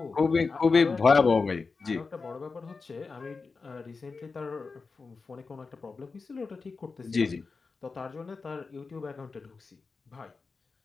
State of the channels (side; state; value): right; quieter; 4.4 dB